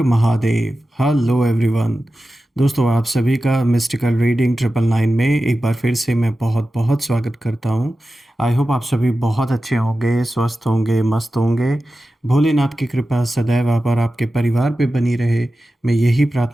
महादेव। Hello everyone. दोस्तों, आप सभी का मिस्टिकल रीडिंग 999 में एक बार फिर से मैं बहुत बहुत स्वागत करता हूं। आई होप आप सभी बहुत अच्छे होंगे, स्वस्थ होंगे, मस्त होंगे। भोलेनाथ की कृपा सदैव आप और आपके परिवार पे बनी रहे, मैं यही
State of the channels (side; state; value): both; normal; correlation 0.93